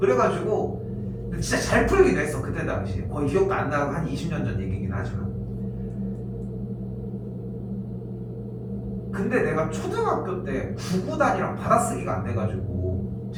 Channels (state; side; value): identical; both; correlation 1.00